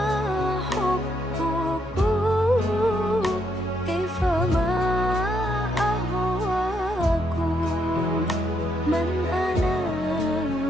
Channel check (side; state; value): both; normal; correlation 0.76